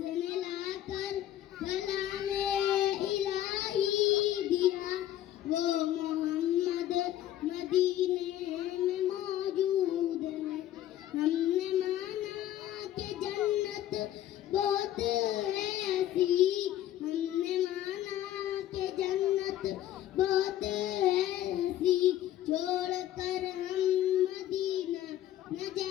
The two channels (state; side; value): quieter; right; 12.6 dB